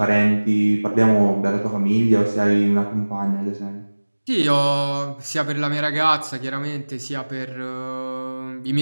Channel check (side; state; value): both; inverted; correlation -1.00